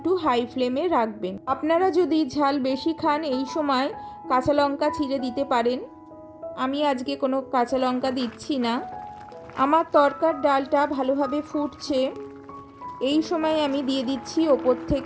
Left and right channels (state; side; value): identical; both; correlation 1.00